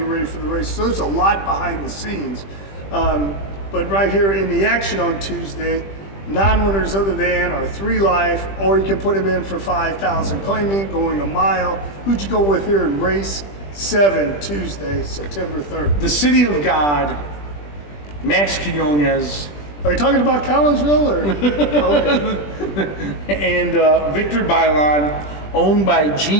ready for the race. So there's a lot behind the scenes. But right here in the action on Tuesday, non-winners other than are 3 life, or you can put them in for 5,000 claiming, going a mile. Who'd you go with here in race 7 Tuesday, September 3rd? The City of God, Max Quinones. Are you talking about Collinsville or? Okay. And Victor Bailon, owned by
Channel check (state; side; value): late; right; 20 ms